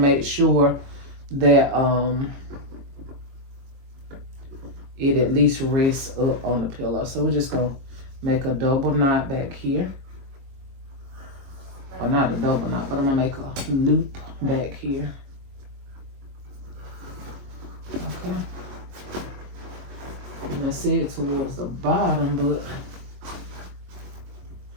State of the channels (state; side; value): late; left; 22 ms